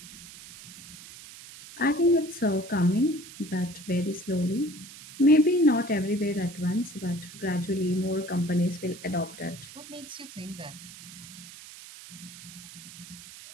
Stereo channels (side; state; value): right; noise; hiss, 16 dB below the sound